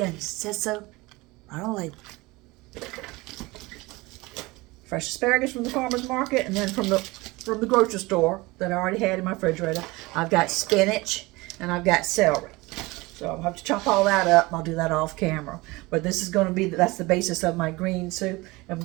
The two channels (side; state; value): left; quieter; 22.4 dB